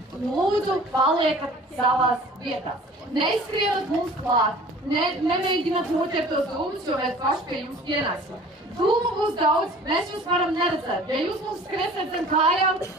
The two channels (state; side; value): normal; both; correlation 0.47